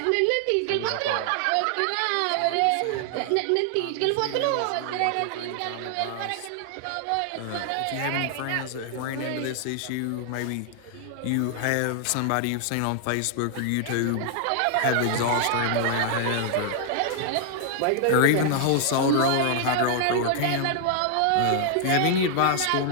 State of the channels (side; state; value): both; different; correlation 0.00